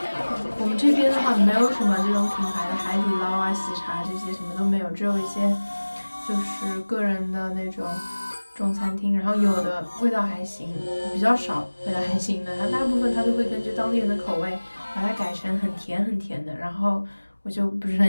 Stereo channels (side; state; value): both; inverted; correlation -1.00